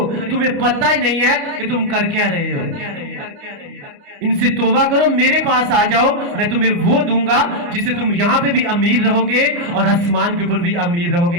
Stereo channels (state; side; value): late; left; 29 ms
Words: تمہیں پتہ ہی نہیں ہے کہ تم کر کیا رہے ہو. ان سے توبہ کرو, میرے پاس آ جاؤ, میں تمہیں وہ دوں گا جس سے تم یہاں پہ بھی امیر رہو گے اور آسمان کے اوپر بھی امیر رہو گے.